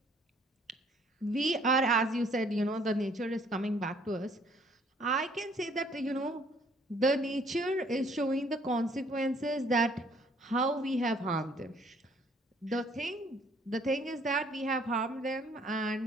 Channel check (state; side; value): normal; both; correlation 0.62